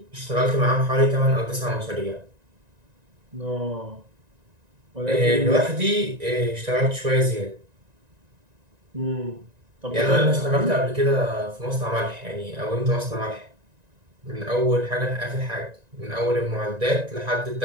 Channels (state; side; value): late; left; 1.9 ms